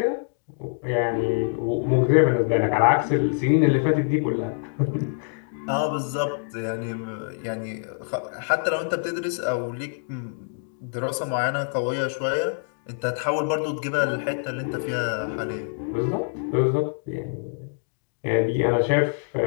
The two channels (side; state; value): right; silent; digital silence